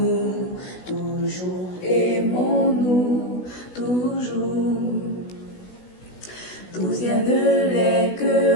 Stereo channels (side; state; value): right; late; 16 ms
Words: toujours aimons-nous, toujours. D'où viennent les